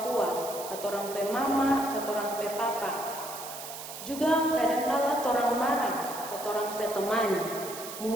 tua, atau orang pe mama, atau orang pe papa. Juga kadangkala orang marah atau orang pe teman.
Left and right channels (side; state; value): right; noise; hiss, 10 dB below the sound